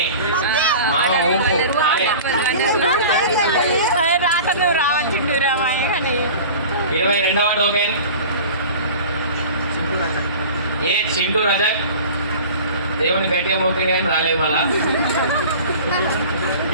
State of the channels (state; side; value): inverted; both; correlation -0.39